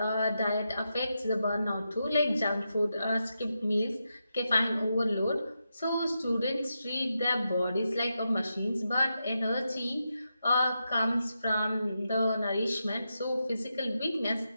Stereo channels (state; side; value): inverted; both; correlation -0.87